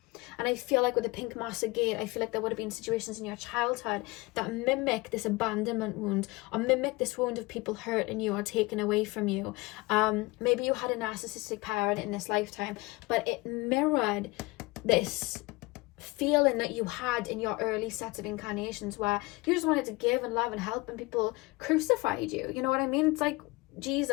And I feel like with the pink master gate, I feel like there would have been situations in your childhood that mimic this abandonment wound, or mimic this wound of people hurting you or taking away from you. Maybe you had a narcissistic parent in this lifetime, but it mirrored this feeling that you had in your early sets of incarnations, where you just wanted to give and love and help, and people crucified you. You know what I mean? It's like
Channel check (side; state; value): right; quieter; 23.3 dB